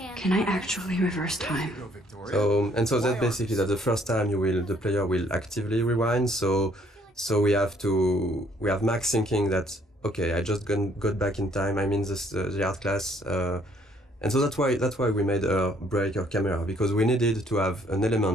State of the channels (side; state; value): both; normal; correlation 0.64